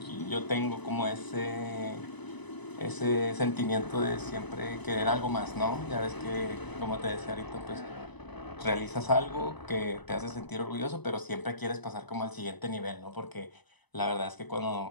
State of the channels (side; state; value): right; late; 1.0 ms